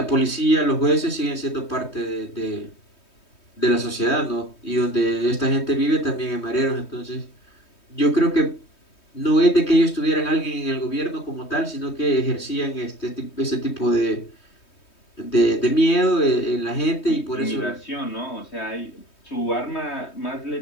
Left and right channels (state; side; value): late; right; 3.2 ms